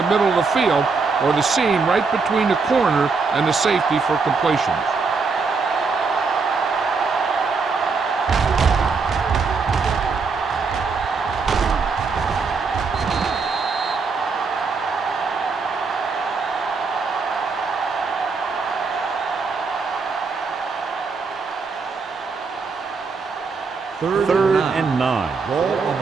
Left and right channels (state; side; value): quieter; left; 4.7 dB